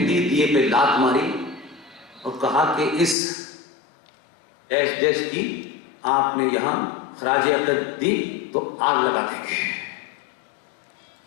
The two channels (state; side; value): drops out; right; at 3.2 s